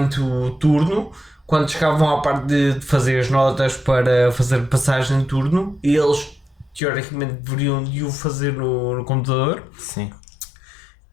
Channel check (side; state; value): right; drops out; at 6.8 s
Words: o turno, quando chegavam à parte de fazer as notas para fazer passagem de turno, eles teoricamente deveriam de o fazer no computador. Sim.